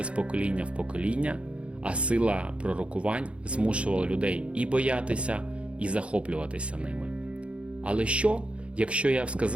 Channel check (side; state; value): left; late; 0.060 ms